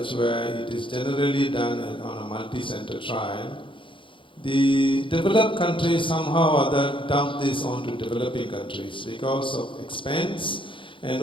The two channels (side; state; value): right; late; 0.25 ms